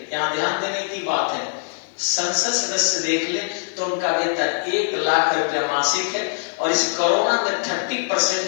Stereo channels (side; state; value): right; silent; digital silence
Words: यहाँ ध्यान देने की बात है, संसद सदस्य देख ले तो उनका वेतन 1 लाख रुपया मासिक है और इस कोरोना में 30%